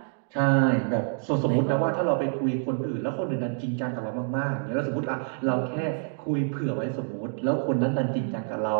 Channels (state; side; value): silent; left; 60 dB below the other